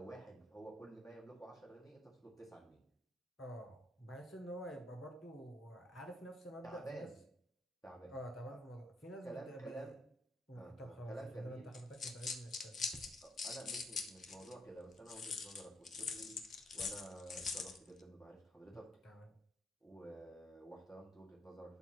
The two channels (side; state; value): both; normal; correlation 0.73